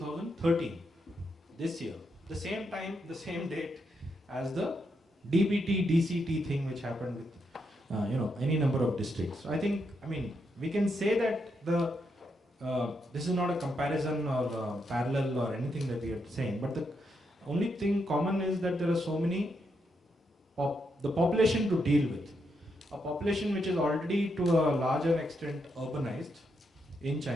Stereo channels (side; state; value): both; normal; correlation 0.80